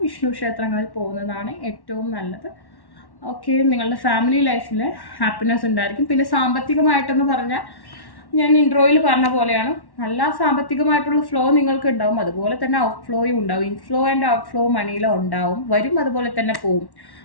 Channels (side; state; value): right; late; 1.1 ms